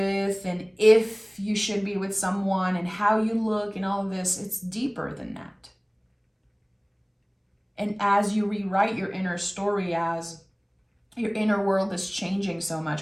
and if you should be with someone and how you look and all of this. It's deeper than that. And as you rewrite your inner story, as your inner world is changing so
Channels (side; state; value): both; identical; correlation 1.00